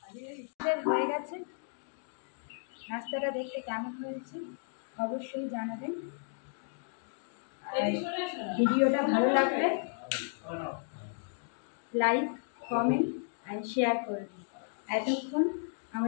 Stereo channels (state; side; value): silent; right; digital silence